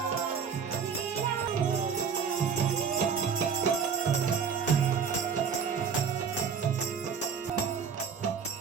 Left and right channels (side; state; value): left; quieter; 6.4 dB